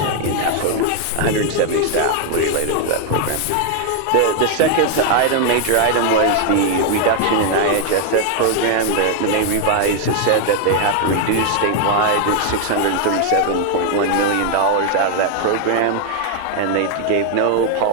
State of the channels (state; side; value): different; both; correlation 0.00